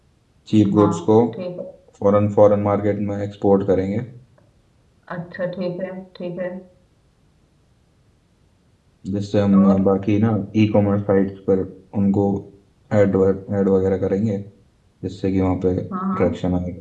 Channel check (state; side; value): identical; both; correlation 1.00